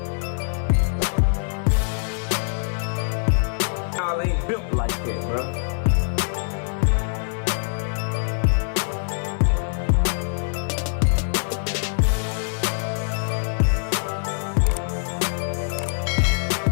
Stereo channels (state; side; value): silent; right; digital silence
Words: y'all ain't built like that, bro.